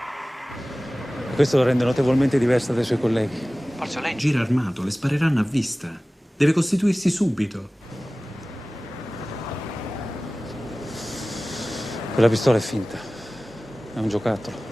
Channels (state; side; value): normal; both; correlation 0.97